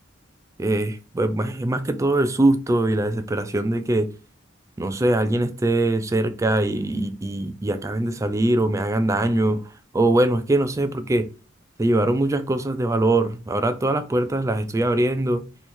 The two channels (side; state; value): both; normal; correlation 0.80